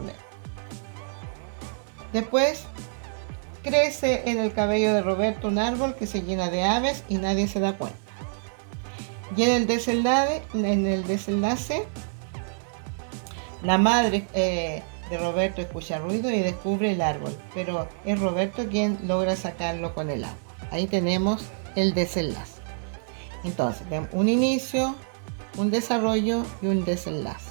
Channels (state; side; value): silent; left; 60 dB below the other